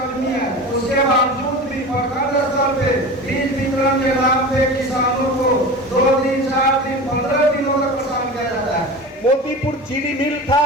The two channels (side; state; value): both; normal; correlation 0.32